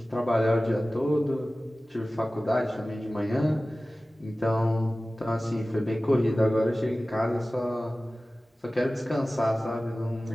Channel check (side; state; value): both; normal; correlation 0.97